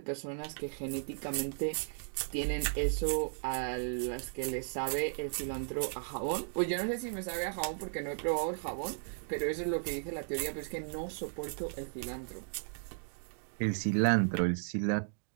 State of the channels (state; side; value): silent; left; digital silence